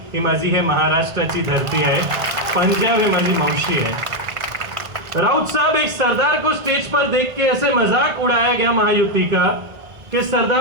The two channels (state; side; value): late; left; 1.4 ms